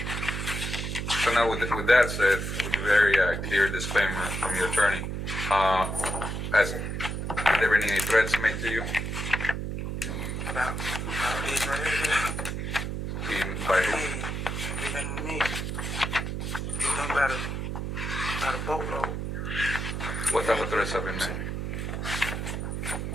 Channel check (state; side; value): noise; right; hum, 3 dB below the sound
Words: So now, with that said, with a very clear disclaimer from your attorney, has there been any threats made to you? About these right here. By who? Even me. We've done about a boatload. What type of threats have been made?